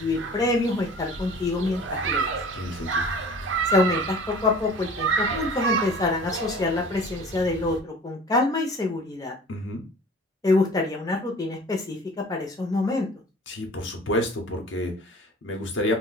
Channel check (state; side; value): normal; both; correlation 0.44